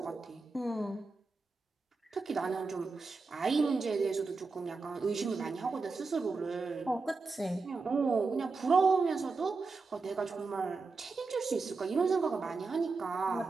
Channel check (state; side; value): quieter; left; 4.1 dB